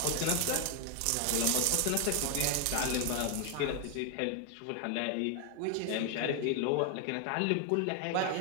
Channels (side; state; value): both; different; correlation 0.00